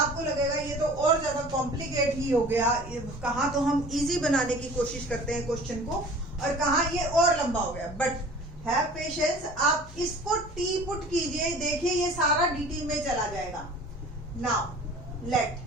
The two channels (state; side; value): noise; left; hum, 20 dB below the sound